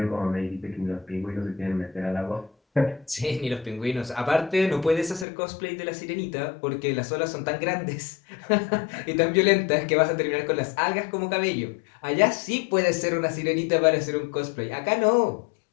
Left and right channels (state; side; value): drops out; right; at 5.2 s